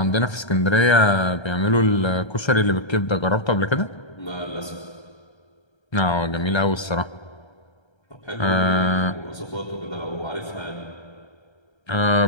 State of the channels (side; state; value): right; late; 1.3 ms